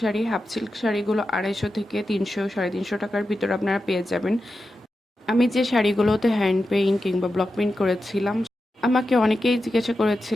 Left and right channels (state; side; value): normal; both; correlation 0.90